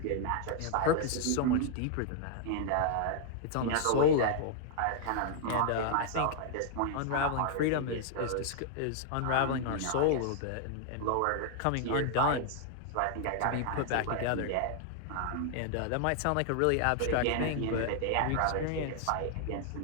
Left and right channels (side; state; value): both; different; correlation 0.00